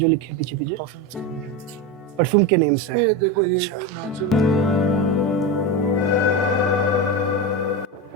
लिखे पीछे पीछे? परफ्यूम के नेम से। ये देखो ये नेचुरल।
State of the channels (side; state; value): both; normal; correlation 0.18